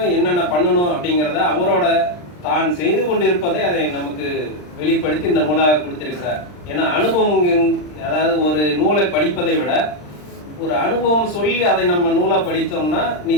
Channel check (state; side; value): late; right; 39 ms